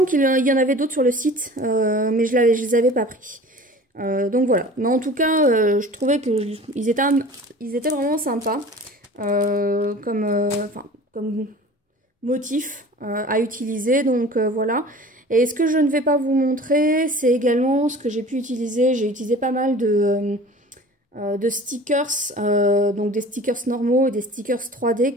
qu'il y en avait d'autres sur le site, mais je les avais pas pris. Donc voilà. Mais en tout cas, je trouvais que ils étaient vraiment sympas, comme motif à utiliser, donc voilà. Et ce que je ne vais pas vous montrer, c'est également ce que j'ai pu utiliser. J'ai utilisé pas mal de stickers, donc des stickers normaux et des stickers 3D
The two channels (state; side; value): normal; both; correlation 0.42